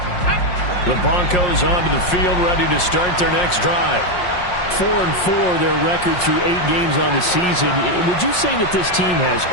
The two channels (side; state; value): right; late; 5.6 ms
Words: The Broncos onto the field, ready to start their next drive. 4-4, their record through 8 games on the season. Would you say that this team has